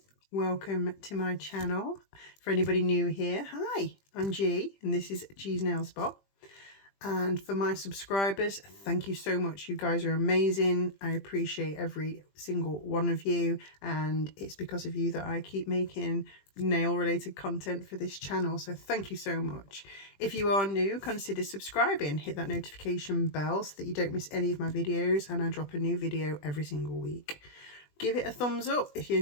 Welcome to my channel. For anybody new here, hi, I'm G and this is G's Nail Spot. And for my subscribers, thank you so much. You guys are amazing. I appreciate every single one of you, and it's because of you that I keep making nail related content for this channel, so thank you so much. If you are new, consider subscribing, hit that notification bell so that you don't miss any of my videos, and I drop a new video every single week. Give it a thumbs up if you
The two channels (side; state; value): right; late; 20 ms